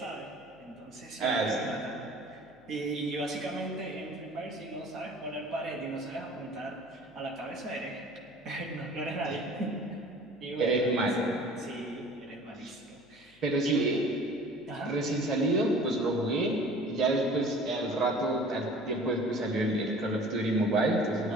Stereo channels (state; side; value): noise; left; hum, 29 dB below the sound